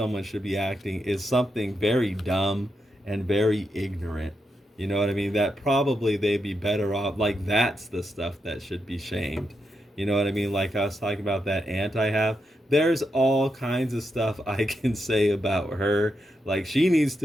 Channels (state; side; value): normal; both; correlation 0.84